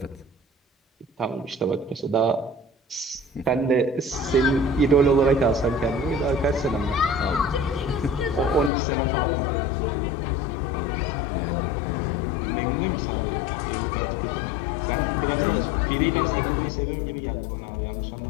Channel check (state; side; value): drops out; right; at 8.7 s